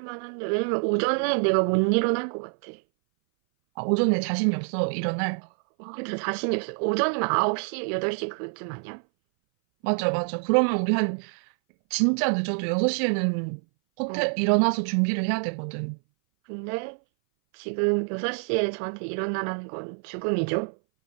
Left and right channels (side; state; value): left; silent; 59 dB below the other